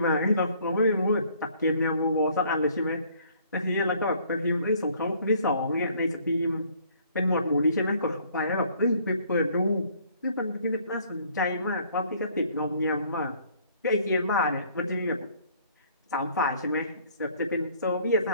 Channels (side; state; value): both; inverted; correlation -0.60